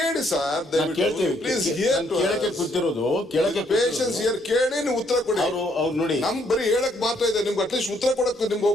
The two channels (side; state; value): both; normal; correlation 0.70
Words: ಸರ್, ಪ್ಲೀಸ್ ಕೇಳಕ್ಕೆ ಕೂತಿರೋದು, ಪೇಷನ್ಸ್ ಇಯರ್ ಕೇಳಿ ನೀವು ಉತ್ತರ ಕೊಡಿ. ಅವ್ರು ನೋಡಿ, ನಮ್ಗೆ ಬರೀ ಹೇಳಕ್ ಮಾತ್ರ ಇದೆ, ನಿಮ್ಗೆ ಅಟ್ಲೀಸ್ಟ್ ಉತ್ತರ ಕೊಡಕ್ ನಿಮ್ಗೆ